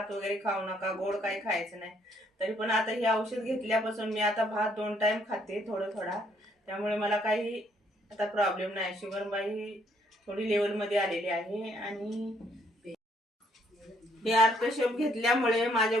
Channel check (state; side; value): normal; both; correlation 0.68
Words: वगैरे खाऊ नका, गोड काही खायचं नाही. तरी पण आता हे औषध घेतल्यापासून मी आता भात 2 टाइम खाते, थोडा. त्यामुळे मला काही आता प्रॉब्लेम नाही. शुगर माझी थोडी लेवलमध्ये आलेली आहे. आणि हे आर्थोसेप घेतल्यामुळे माझ्या